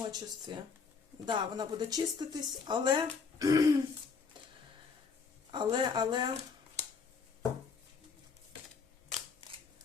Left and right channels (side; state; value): right; quieter; 5.4 dB